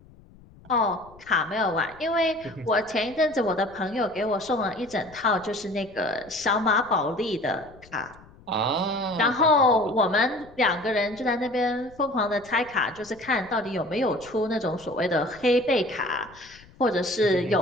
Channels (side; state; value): left; noise; rumble, 24 dB below the sound